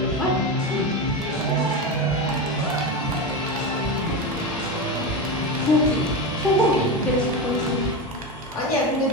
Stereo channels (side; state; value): both; normal; correlation 0.18